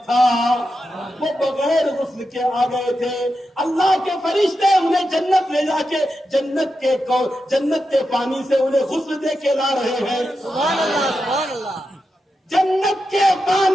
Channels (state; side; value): normal; both; correlation 0.88